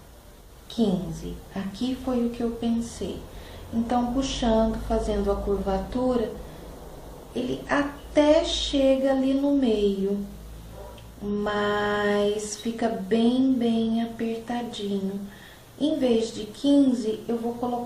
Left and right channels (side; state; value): both; identical; correlation 1.00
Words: 15. Aqui foi o que eu pensei. Então, puxando, fazendo a curvatura, ele até chega ali no meio, mas fica bem apertadinho. Em vez de 15, eu vou